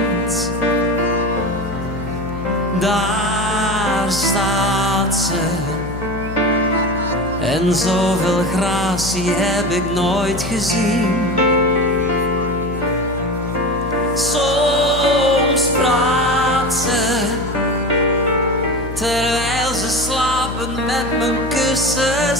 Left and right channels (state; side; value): noise; left; hum, 9 dB below the sound